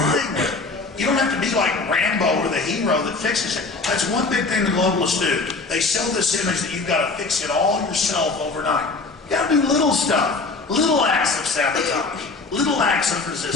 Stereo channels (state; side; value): quieter; right; 3.8 dB